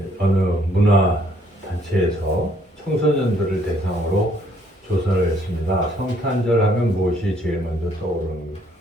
어느 문화단체에서 청소년들을 대상으로 조사를 했습니다. 성탄절 하면 무엇이 제일 먼저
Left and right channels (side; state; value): both; normal; correlation 0.66